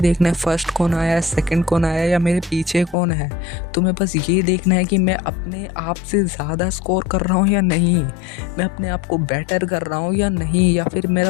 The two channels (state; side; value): drops out; right; at 3.0 s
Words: है फर्स्ट कौन आया, सेकंड कौन आया या मेरे पीछे कौन है। तुम्हें बस ये देखना है कि मैं अपने आप से ज़्यादा स्कोर कर रहा हूँ या नहीं, मैं अपने आप को बेटर कर रहा हूँ या नहीं, या फिर